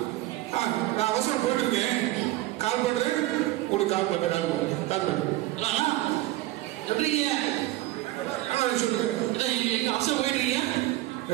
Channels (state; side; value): quieter; left; 16.9 dB